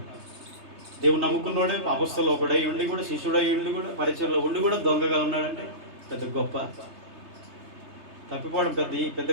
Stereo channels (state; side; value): late; left; 3.3 ms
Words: దేవుని నమ్ముకున్నోడే అపొస్తలుడు ఒకడై ఉండి కూడా, శిష్యుడై ఉండి కూడా, పరిచయంలో ఉండి కూడా దొంగగా ఉన్నాడంటే పెద్ద గొప్ప. తప్పిపోవడం పెద్ద